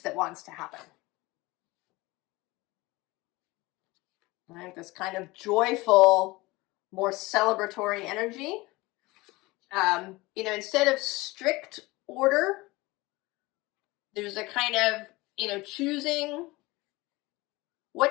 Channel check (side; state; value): right; quieter; 21.7 dB